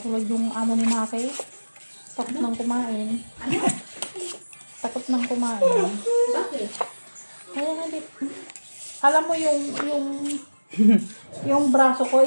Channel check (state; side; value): inverted; both; correlation -1.00